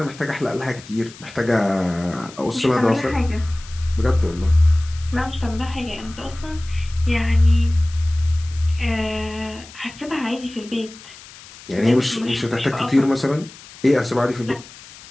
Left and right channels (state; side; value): noise; left; hiss, 19 dB below the sound